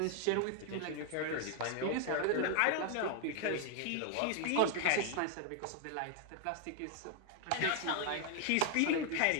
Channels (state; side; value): different; both; correlation 0.00